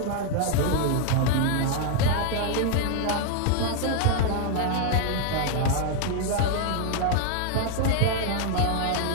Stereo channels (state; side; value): different; both; correlation 0.00